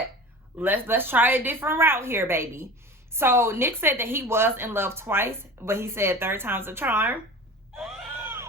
let's try a different route here, baby. So Nick said that he was in love twice, but he said third time's a charm.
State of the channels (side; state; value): both; normal; correlation 0.36